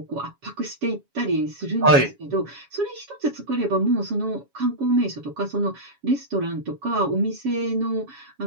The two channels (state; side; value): late; left; 7.2 ms